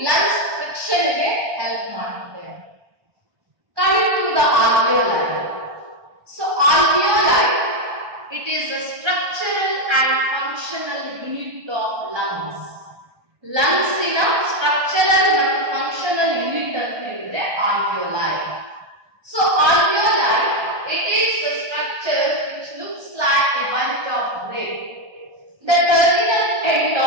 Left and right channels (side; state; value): left; late; 1.2 ms